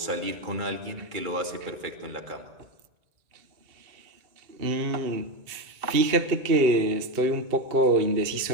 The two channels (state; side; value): late; left; 2.7 ms